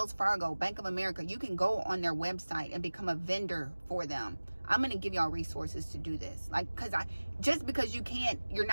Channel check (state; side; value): inverted; both; correlation -1.00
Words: Fargo, Bank of America. You can go on their website and become a vendor for them. I'm going to give y'all resources to do this. Like, just because you're